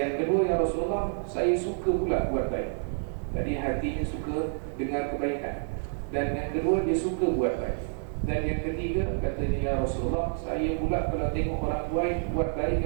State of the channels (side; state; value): left; silent; digital silence